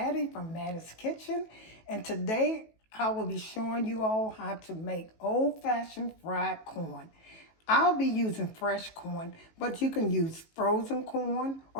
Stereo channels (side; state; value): right; late; 18 ms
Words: from Mattie's Kitchen, and today I will be showing you all how to make old-fashioned fried corn. I'll be using fresh corn, but you can use frozen corn